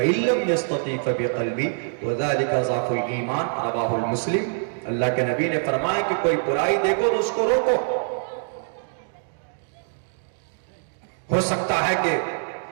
لم یستطع فبقلبہ وذلک ضعف الایمان، رواہ المسلم۔ اللہ کے نبی نے فرمایا کہ کوئی برائی دیکھو تو اس کو روکو۔ ہو سکتا ہے کہ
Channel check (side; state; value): left; silent; digital silence